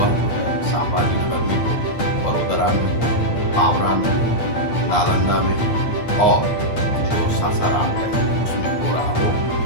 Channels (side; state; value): right; late; 8.7 ms